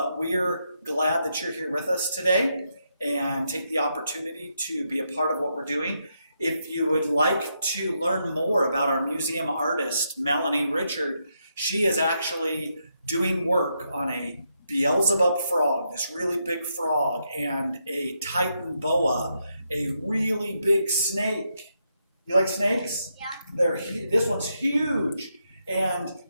we're glad that you're here with us today and take the opportunity to be a part of what we're doing. If you would like to learn more about our museum artist, Melanie Richard, she is actually doing work on a Beelzebub frog, this really big frog, and a Titan boa, a really big snake. You like snakes? Yeah. This one's huge. And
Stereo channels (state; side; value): inverted; both; correlation -0.81